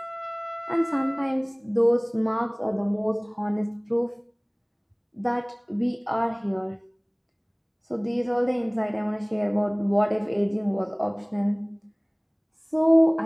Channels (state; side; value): identical; both; correlation 1.00